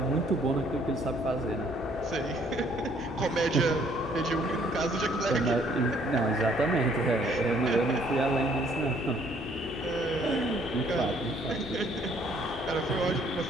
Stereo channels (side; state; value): both; normal; correlation 0.63